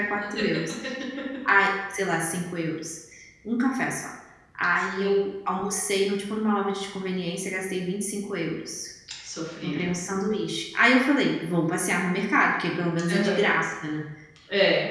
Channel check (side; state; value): both; identical; correlation 1.00